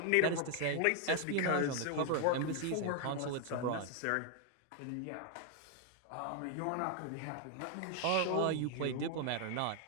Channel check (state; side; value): different; both; correlation 0.00